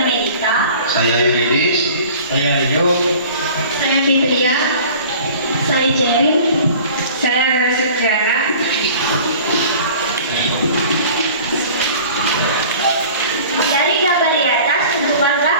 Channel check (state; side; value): inverted; both; correlation -0.44